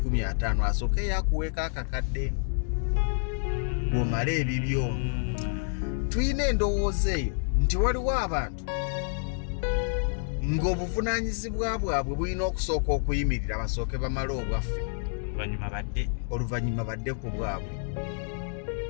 asooke yakuweeka akakadde bw'omala ebibyo tulina endowooza eyo nti waliwo abantu ng'obuvunaanyizibwa bwabwe bulina okusooka okuyimirira basooke bamale obwaffe oluvannyuma badde ku bwabwe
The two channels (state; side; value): silent; right; digital silence